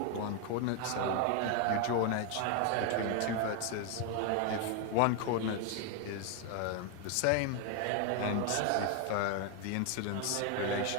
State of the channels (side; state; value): both; different; correlation 0.01